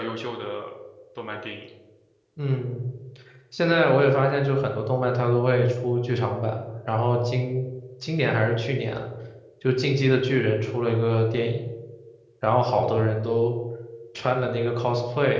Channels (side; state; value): both; identical; correlation 1.00